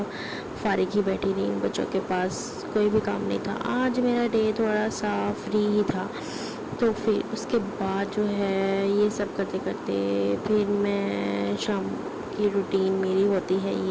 فارغ ہی بیٹھی رہی. ان بچوں کے پاس کوئی بھی کام نہیں تھا. آج میرا ڈے تھوڑا سا فری ہی تھا. تو پھر اس کے بعد جو ہے یہ سب کرتے کرتے پھر میں شام کی روٹین میری ہوتی ہے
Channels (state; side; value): identical; both; correlation 1.00